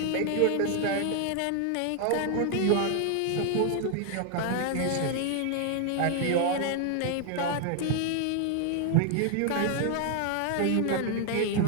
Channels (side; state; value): both; different; correlation 0.00